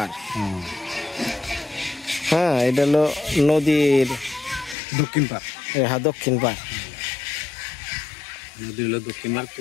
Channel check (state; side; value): drops out; right; at 4.8 s